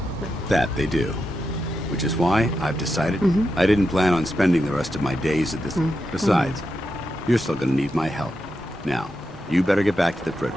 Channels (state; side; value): normal; both; correlation 0.87